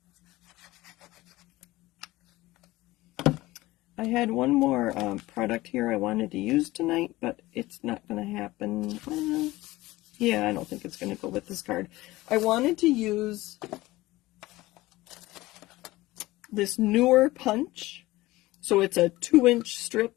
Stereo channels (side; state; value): right; quieter; 18.6 dB